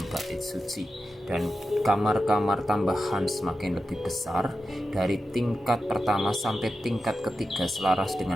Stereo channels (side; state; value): both; normal; correlation 0.90